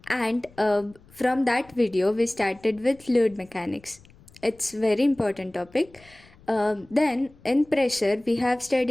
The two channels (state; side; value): noise; left; rumble, 26 dB below the sound